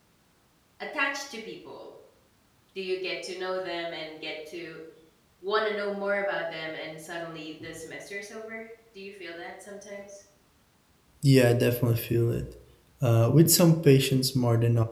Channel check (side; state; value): both; identical; correlation 1.00